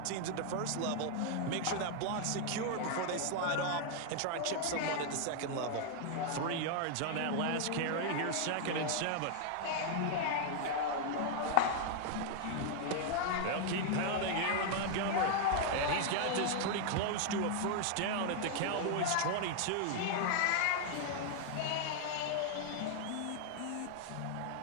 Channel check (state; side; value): different; both; correlation 0.00